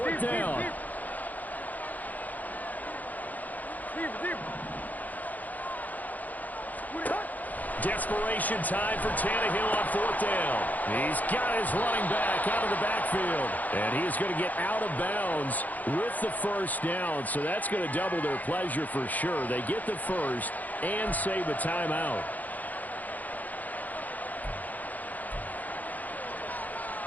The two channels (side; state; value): right; late; 0.080 ms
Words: down. Desperation time for Tannehill on fourth down. He's got his running back out of the backfield. And he is going to get out of bounds with the first down. So that's going to double their pleasure for sure. They get the first and save a timeout.